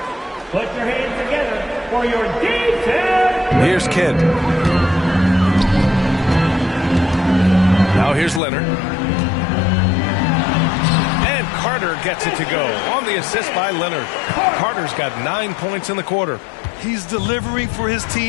Put your hands together for your defense. Here's Kidd. Now here's Leonard. And Carter gets it to go on the assist by Leonard. Carter's got 9 points in the quarter. He's delivering for his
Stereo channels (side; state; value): right; drops out; at 8.4 s